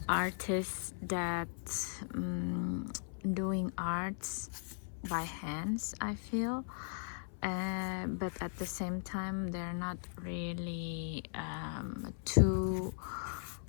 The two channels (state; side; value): silent; right; 52 dB below the other